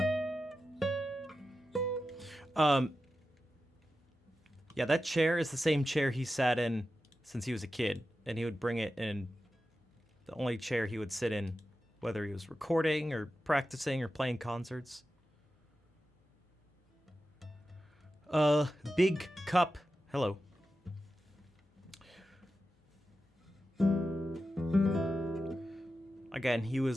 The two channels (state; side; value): normal; both; correlation 0.92